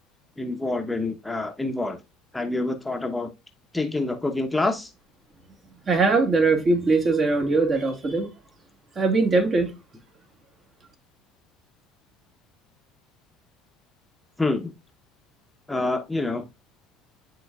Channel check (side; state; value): both; normal; correlation 0.75